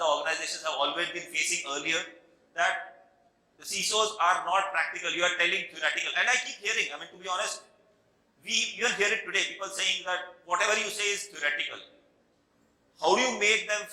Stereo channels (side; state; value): both; identical; correlation 1.00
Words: the organizations have always been facing earlier, that the CISOs are not practical. You are telling theoretical. And I keep hearing, I mean, to be honest, we even hear it today, people saying that whatever you say is theoretical. How do you make them